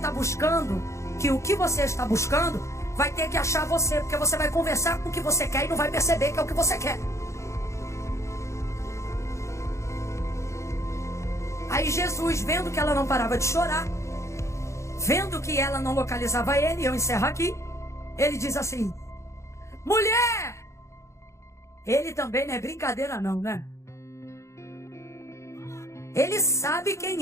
buscando, que o que você está buscando, vai ter que achar você. Porque você vai conversar com o que você quer e não vai perceber que é o que você quer. Aí Jesus, vendo que ela não parava de chorar, vendo que ela não localizava ele, eu encerro aqui. Ele diz assim: mulher! Ele também não é brincadeira não, né? Ele sabe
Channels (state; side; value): late; right; 0.14 ms